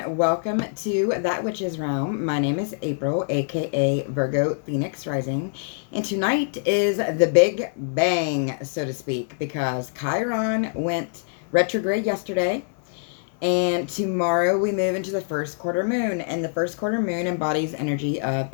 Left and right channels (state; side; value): silent; right; 56 dB below the other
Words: welcome to That Witch's Realm. My name is April, aka Virgo Phoenix Rising, and tonight is the big bang, so to speak, because Chiron went retrograde yesterday, and tomorrow we move into the first quarter moon, and the first quarter moon embodies energy of